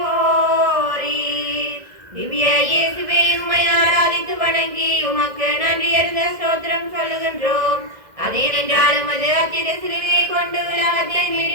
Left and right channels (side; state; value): left; late; 2.0 ms